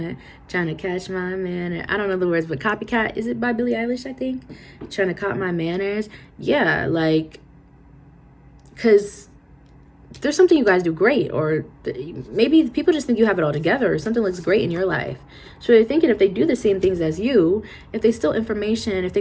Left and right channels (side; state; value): both; identical; correlation 1.00